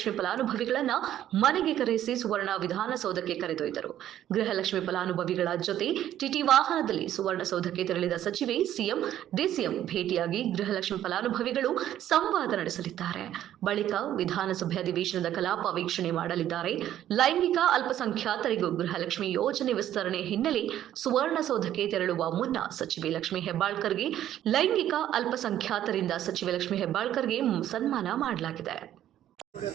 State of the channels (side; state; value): left; quieter; 11.8 dB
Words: ಫಲಾನುಭವಿಗಳನ್ನ ಮನೆಗೆ ಕರೆಸಿ ಸುವರ್ಣ ವಿಧಾನಸೌಧಕ್ಕೆ ಕರೆದೊಯ್ದರು. ಗೃಹಲಕ್ಷ್ಮಿ ಫಲಾನುಭವಿಗಳ ಜೊತೆ ಟಿಟಿ ವಾಹನದಲ್ಲಿ ಸುವರ್ಣಸೌಧಕ್ಕೆ ತೆರಳಿದ ಸಚಿವೆ ಸಿಎಂ, ಡಿಸಿಎಂ ಭೇಟಿಯಾಗಿ ಗೃಹಲಕ್ಷ್ಮಿ ಫಲಾನುಭವಿಗಳು ಸಂವಾದ ನಡೆಸಲಿದ್ದಾರೆ. ಬಳಿಕ ವಿಧಾನಸಭೆ ಅಧಿವೇಶನದ ಕಲಾಪ ವೀಕ್ಷಣೆ ಮಾಡಲಿದ್ದಾರೆ. ಲೈಂಗಿಕ ಅಲ್ಪಸಂಖ್ಯಾತರಿಗೂ ಗೃಹಲಕ್ಷ್ಮಿ ಯೋಜನೆ ವಿಸ್ತರಣೆ ಹಿನ್ನೆಲೆ ಸುವರ್ಣಸೌಧಕ್ಕೆ ತೆರಳುವ ಮುನ್ನ ಸಚಿವೆ ಲಕ್ಷ್ಮಿ ಹೆಬ್ಬಾಳ್ಕರ್ಗೆ ಲೈಂಗಿಕ ಅಲ್ಪಸಂಖ್ಯಾತರಿಂದ ಸಚಿವೆ ಲಕ್ಷ್ಮಿ ಹೆಬ್ಬಾಳ್ಕರ್ಗೆ ಸನ್ಮಾನ ಮಾಡಲಾಗಿದೆ.